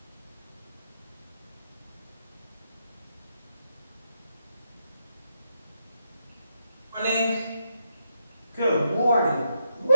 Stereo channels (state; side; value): inverted; both; correlation -0.79